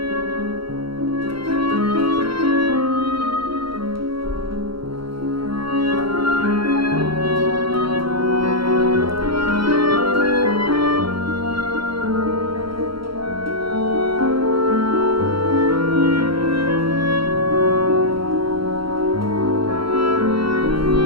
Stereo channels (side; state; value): left; late; 0.74 ms